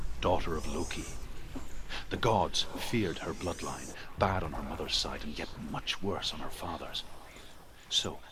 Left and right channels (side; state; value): both; identical; correlation 1.00